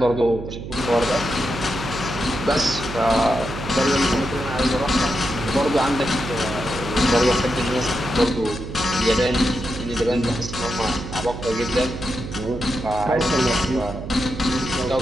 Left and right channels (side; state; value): right; noise; hum, 9 dB below the sound